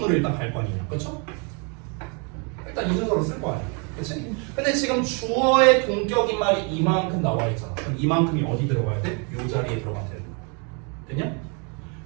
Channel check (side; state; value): left; quieter; 35.2 dB